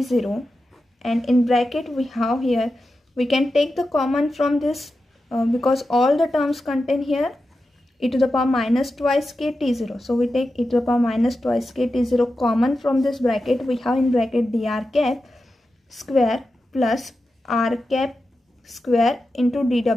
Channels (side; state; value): both; normal; correlation 0.91